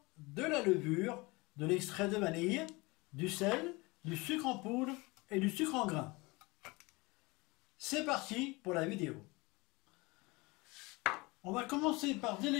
de la levure, de l'extrait de vanille, du sel, du sucre en poudre et du sucre en grains. C'est parti pour la vidéo. On va commencer par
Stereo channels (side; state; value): right; quieter; 24.4 dB